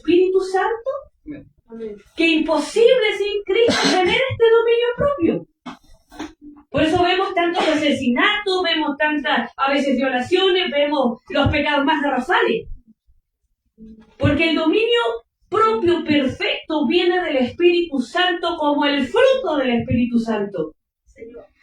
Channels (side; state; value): both; identical; correlation 1.00